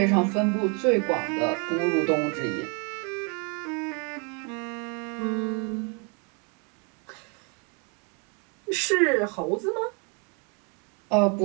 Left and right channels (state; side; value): quieter; left; 35.6 dB